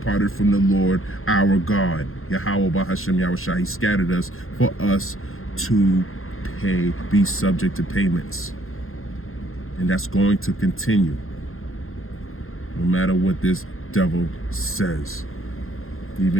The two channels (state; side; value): late; right; 0.61 ms